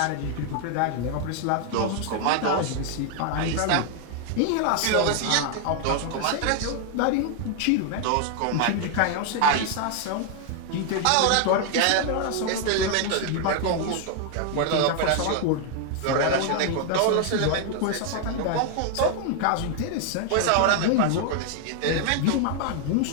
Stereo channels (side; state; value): both; different; correlation 0.00